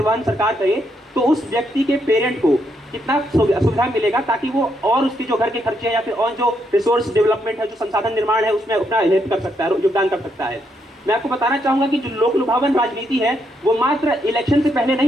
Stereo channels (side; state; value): both; normal; correlation 0.77